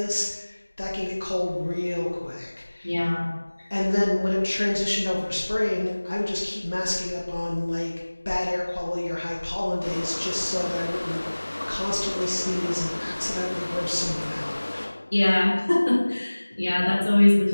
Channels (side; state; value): both; inverted; correlation -1.00